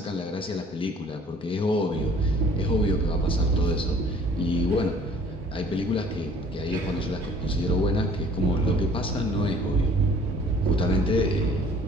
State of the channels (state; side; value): normal; both; correlation 0.54